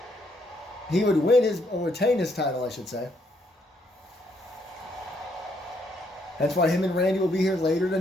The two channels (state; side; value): normal; both; correlation 0.73